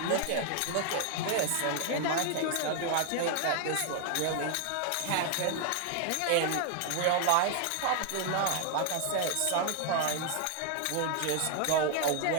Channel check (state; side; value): different; both; correlation 0.00